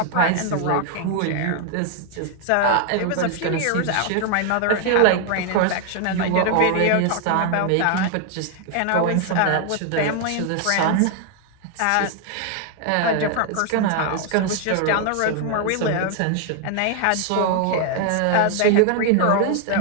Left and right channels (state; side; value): different; both; correlation 0.00